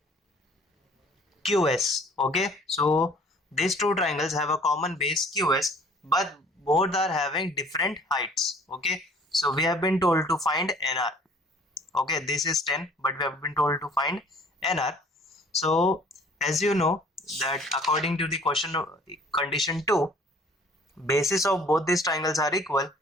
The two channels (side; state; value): both; normal; correlation 0.53